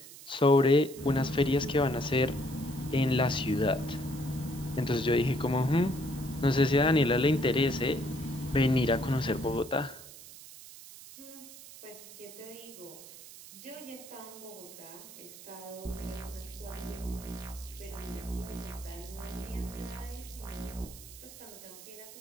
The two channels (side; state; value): right; noise; hiss, 16 dB below the sound